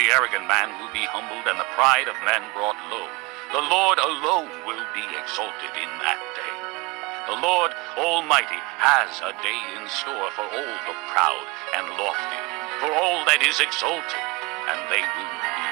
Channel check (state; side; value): quieter; left; 25.1 dB